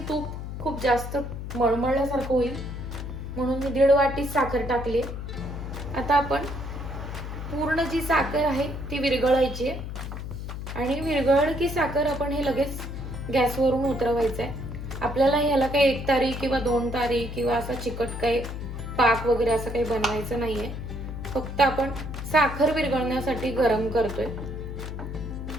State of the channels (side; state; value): left; noise; hum, 7 dB below the sound